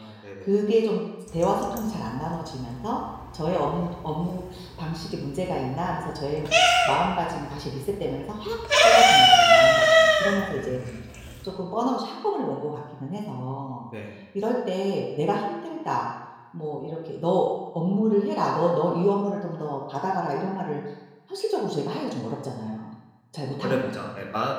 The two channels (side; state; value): both; identical; correlation 1.00